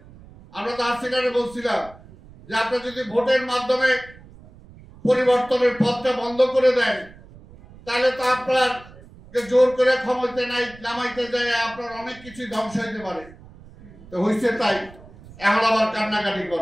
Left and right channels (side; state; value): right; noise; rumble, 21 dB below the sound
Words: আমরা তো হাসিনারে বলছিলাম যে আপনি যদি ভোটের মাধ্যমে পরিবর্তনের পথটা বন্ধ করে দেন তাহলে তো আপনার জোর করে ক্ষমতা নামাইতে যায় আপনার অনেক কিছু ধ্বংস হইতে পারে। তো হয়েছে তাই, এখন আবার কান্নাকাটি